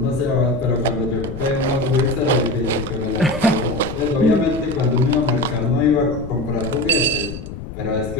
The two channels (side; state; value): left; noise; rumble, 10 dB below the sound